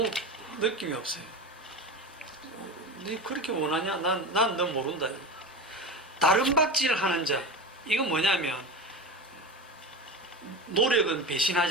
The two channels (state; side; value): normal; both; correlation 0.25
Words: 느낌이 없어요. 네 그렇게 원하냐? 난 너 모른다. 다른 박질을 하는 자. 이건 뭐냐면 노력은